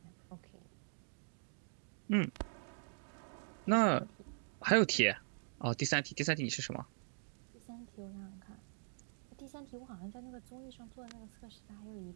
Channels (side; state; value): left; silent; digital silence